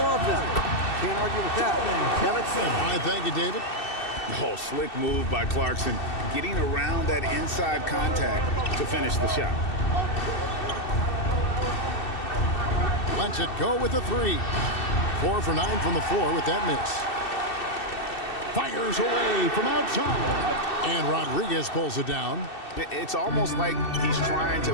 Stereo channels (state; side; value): late; right; 2.7 ms